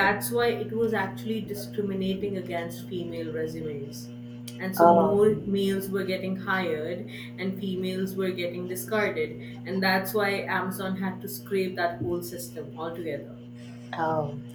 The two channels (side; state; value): both; identical; correlation 1.00